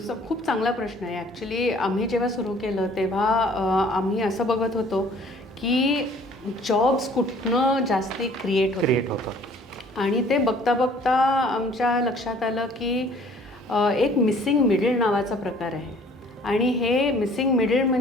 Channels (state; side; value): normal; both; correlation 0.54